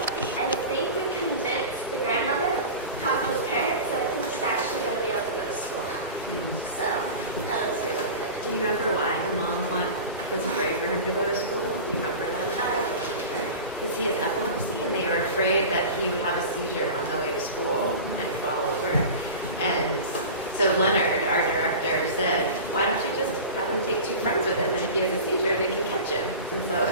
I think we convinced the grandmother to talk to his parents, so I think he's actually going to be able to go to school now. So that was really good. Do you remember why the mom was afraid for him to go to school? Do you remember that? Because he has epilepsy, and they were afraid that he would have a seizure on the way to school and fall over. And so Leonard, our director, said, why don't you just have him take 2 friends with him, and if he has a seizure, they can catch him. And so,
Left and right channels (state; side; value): inverted; both; correlation -0.32